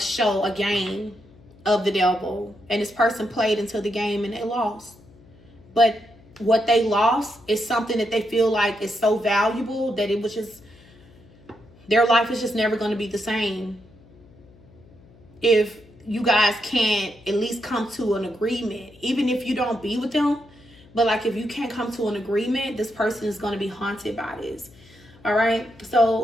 a game of the devil. And this person played into the game and they lost. But what they lost is something that they feel like is so valuable that it was just, their life is just never going to be the same. If you guys can't at least come to an agreement, even if you don't be with them, but like if you can't come to an agreement, this person is going to be haunted by this. All right.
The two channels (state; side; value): noise; left; hum, 26 dB below the sound